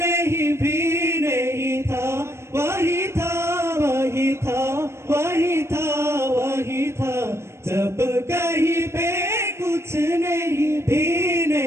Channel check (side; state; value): left; late; 0.13 ms